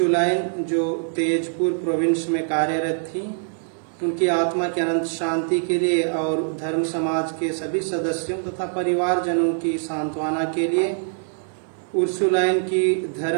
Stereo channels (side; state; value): left; silent; digital silence